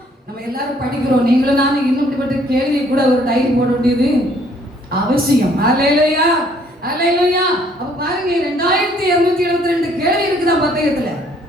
நம்ம எல்லாரும் படிக்கிறோம், நீங்களும் நானும் இன்னும் இப்படிப்பட்ட கேள்வி கூட ஒரு டைரி போட வேண்டியது அவசியம். அல்லேலூயா, அல்லேலூயா. அப்ப பாருங்க, 2272 கேள்வி இருக்குதா பத்தயத்துல.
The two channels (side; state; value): both; normal; correlation 0.63